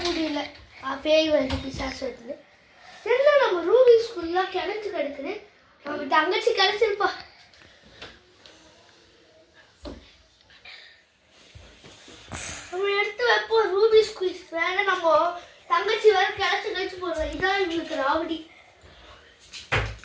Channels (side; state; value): both; identical; correlation 1.00